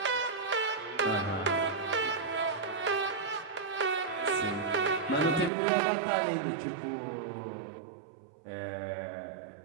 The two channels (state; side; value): drops out; left; at 5.5 s